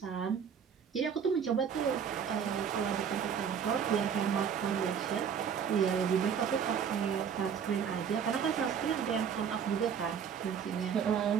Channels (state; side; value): quieter; left; 7.4 dB